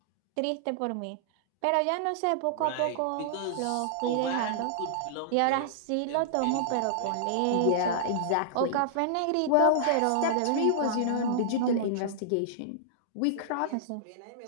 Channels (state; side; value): different; both; correlation -0.01